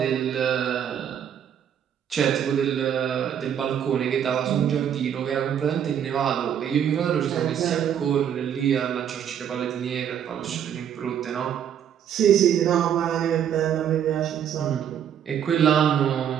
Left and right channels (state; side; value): quieter; left; 9.1 dB